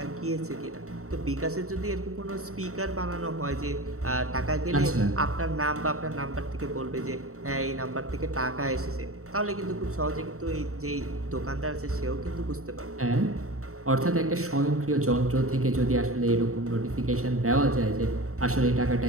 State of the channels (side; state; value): left; late; 0.64 ms